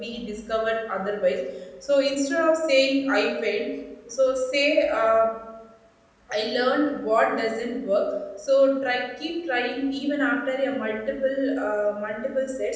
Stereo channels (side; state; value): both; identical; correlation 1.00